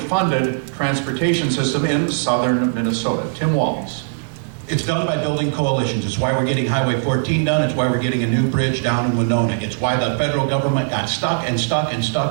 transportation system in southern Minnesota? Tim Walz. It's done by building coalitions. It's why we're getting Highway 14 done. It's why we're getting a new bridge down in Winona. It's why the federal government got stuck and stuck and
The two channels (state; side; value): silent; left; 59 dB below the other